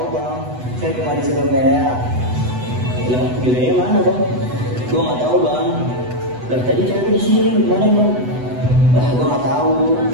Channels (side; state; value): left; late; 8.0 ms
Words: bang. Saya cuma disuruh kayak. Lah, bilangnya mana bang? Gua nggak tahu bang. Lah tadi cewek di sini gimana bang? Gua nggak tahu.